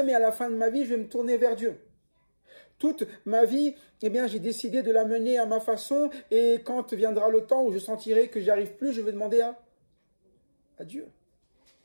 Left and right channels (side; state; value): both; inverted; correlation -1.00